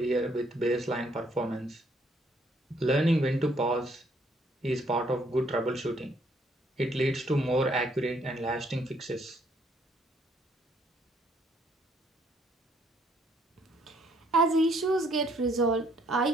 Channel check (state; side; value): normal; both; correlation 0.67